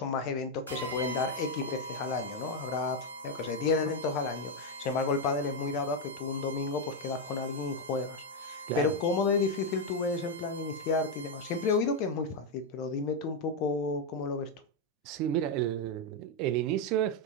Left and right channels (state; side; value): normal; both; correlation 0.03